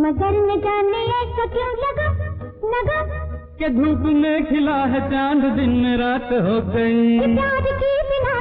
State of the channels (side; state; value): both; identical; correlation 1.00